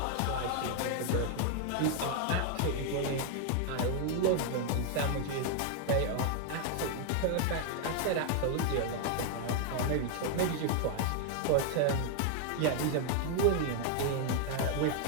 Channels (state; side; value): different; both; correlation 0.00